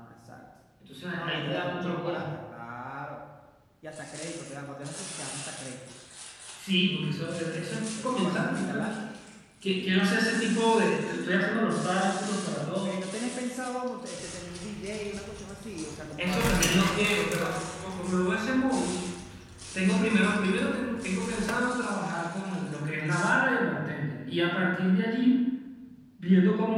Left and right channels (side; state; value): both; identical; correlation 1.00